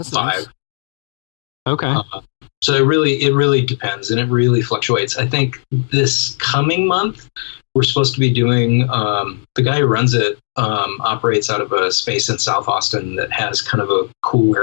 Nice. Okay. So it really depends, and it really fluctuates. I think this coming month we're supposed to be doing. The guy who runs it operates out of a space in South Austin that has kind of a cool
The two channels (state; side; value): silent; right; 62 dB below the other